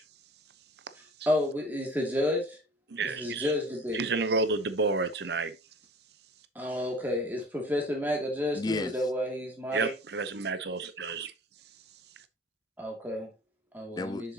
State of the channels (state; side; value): normal; both; correlation 0.44